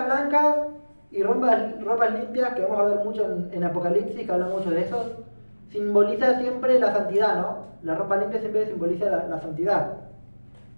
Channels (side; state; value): both; inverted; correlation -1.00